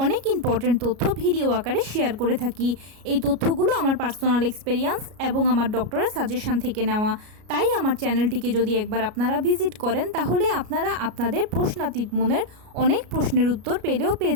অনেক ইম্পর্টেন্ট তথ্য ভিডিও আকারে শেয়ার করে থাকি। এই তথ্যগুলো আমার পার্সোনাল এক্সপেরিয়েন্স এবং আমার ডক্টরের সাজেশন থেকে নেওয়া। তাই আমার চ্যানেলটিকে যদি একবার আপনারা ভিজিট করেন তাহলে আপনারা আপনাদের প্রশ্নাতীত মনের অনেক প্রশ্নের উত্তর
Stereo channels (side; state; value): left; late; 33 ms